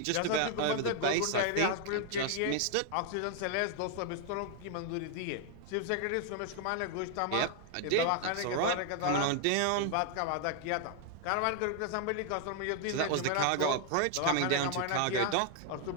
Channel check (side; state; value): both; different; correlation 0.00